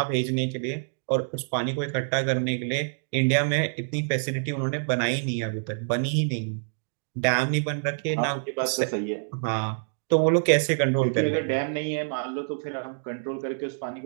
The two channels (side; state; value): left; silent; digital silence